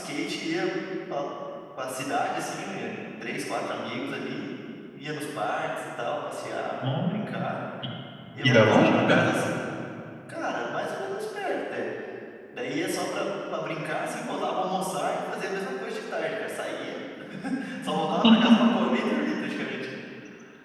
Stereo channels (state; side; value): identical; both; correlation 1.00